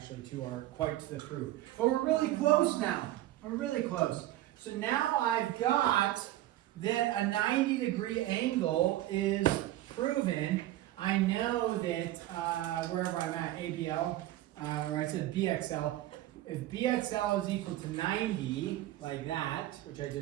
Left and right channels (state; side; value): quieter; left; 14.9 dB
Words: quite to the proof. But we're really close now. We're really close. So now I've got that a 90-degree angle is proven. I know that wherever I'm at, ABL, or I said BXL, if BXL is equal to 90, like that, which I